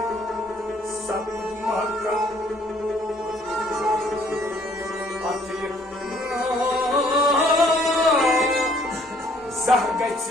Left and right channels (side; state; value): both; normal; correlation 0.62